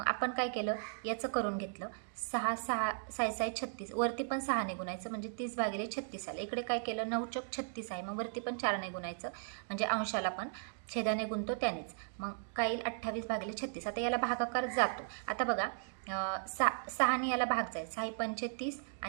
आपण काय केलं, याचं करून घेतलं. 6 6 6 6 36 वरती पण 6ने गुणायचं, म्हणजे 30 भागिले 36 आलं. इकडे काय केलं, 9 चौक 36 आहे, मग वरती पण 4ने गुणायचं, म्हणजे अंशाला पण छेदाने गुणतो त्यानेच. मग काय येईल, 28 भागिले 36. आता याला भागाकार जातो. आता बघा 6ने याला भाग जाईल, 6 पंचे 30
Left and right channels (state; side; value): silent; left; digital silence